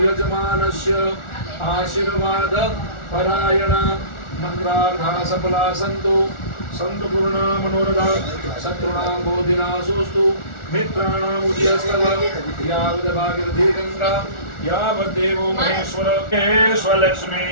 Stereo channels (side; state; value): right; late; 1.4 ms